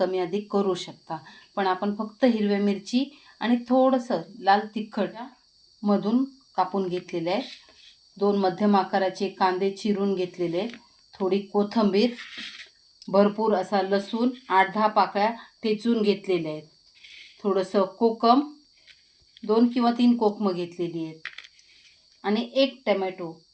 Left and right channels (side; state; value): both; identical; correlation 1.00